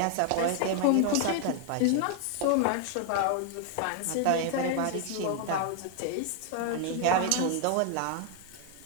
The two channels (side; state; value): both; different; correlation 0.00